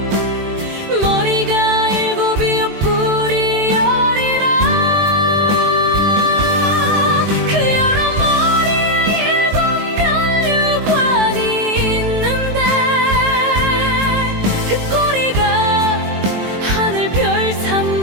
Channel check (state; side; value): late; left; 21 ms